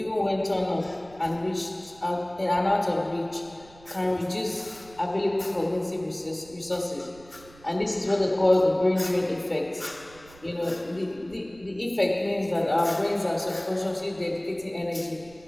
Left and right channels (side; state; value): right; noise; rumble, 24 dB below the sound